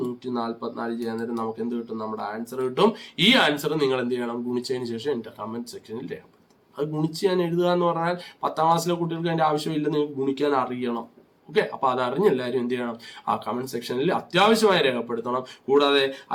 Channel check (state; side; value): identical; both; correlation 1.00